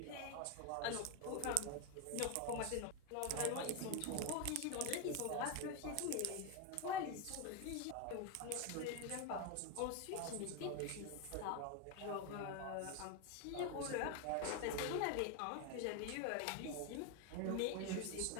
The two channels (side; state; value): both; different; correlation 0.02